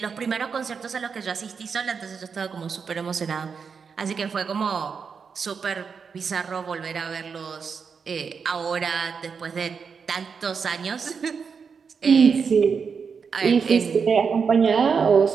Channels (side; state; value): left; quieter; 5.9 dB